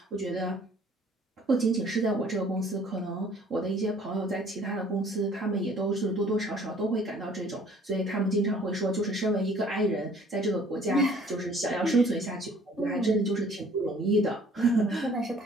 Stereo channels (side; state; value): both; normal; correlation 0.55